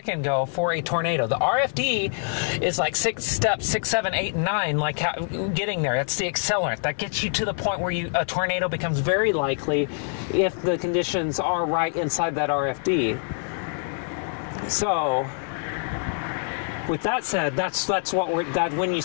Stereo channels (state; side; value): silent; right; 62 dB below the other